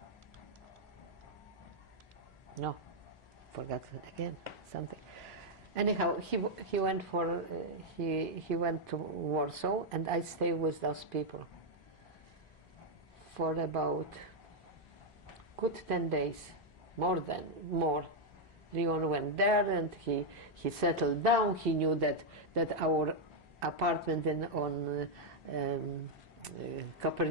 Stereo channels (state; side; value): normal; both; correlation -0.02